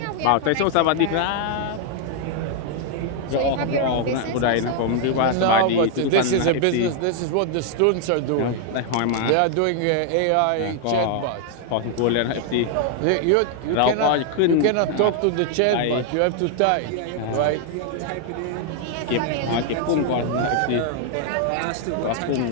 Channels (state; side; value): different; both; correlation 0.00